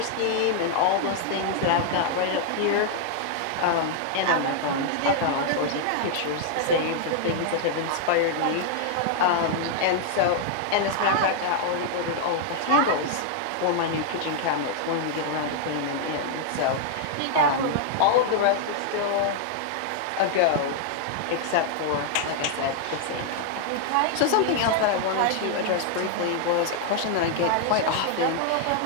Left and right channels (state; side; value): different; both; correlation -0.01